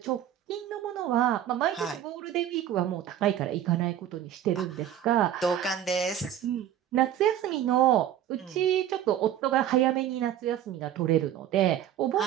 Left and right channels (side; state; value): left; quieter; 10.8 dB